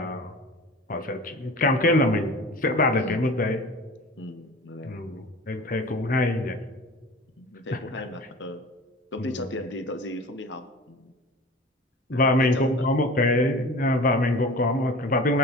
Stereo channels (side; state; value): both; normal; correlation 0.38